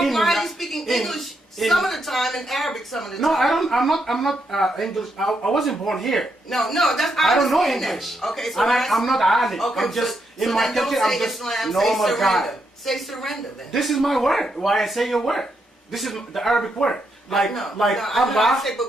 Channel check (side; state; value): both; normal; correlation 0.80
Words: are you speaking in- English in- some of the time and Arabic some of the time? No, I don't. I'm not English. I wasn't born here. No, that's I don't know understand that. English. Okay, so And I'm not alim. Okay, I'm just so in my then don't country. say I'm just Islam, normal say guy. surrender. Say surrender then. This is my word. Why I say your word? This is the Arabic word. Like no, Allah I say, but